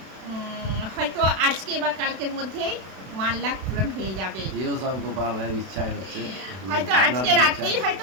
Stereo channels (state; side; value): late; left; 32 ms